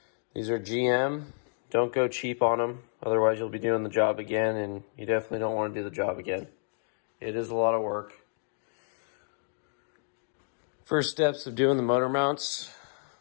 These are GM. Don't go cheap on them, otherwise you'll be doing the job again, and you definitely don't want to do the job again. It is a lot of work. First steps of doing the motor mounts,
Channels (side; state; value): right; silent; digital silence